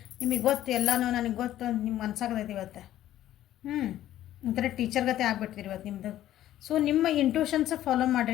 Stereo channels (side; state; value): right; quieter; 12.9 dB